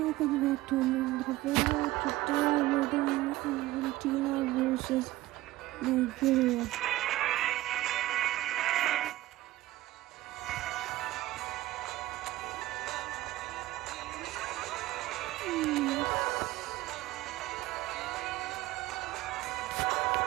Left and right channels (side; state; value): left; quieter; 17.1 dB